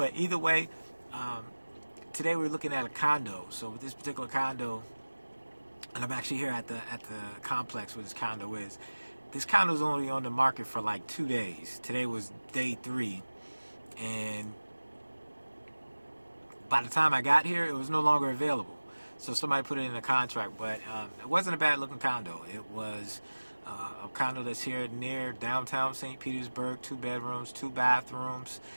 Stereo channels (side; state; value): both; inverted; correlation -1.00